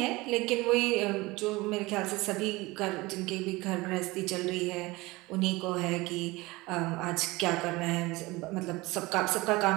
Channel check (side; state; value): left; quieter; 21.7 dB